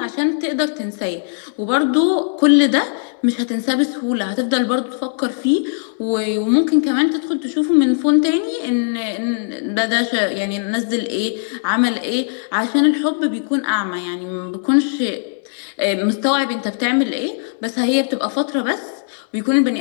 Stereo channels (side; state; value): right; silent; digital silence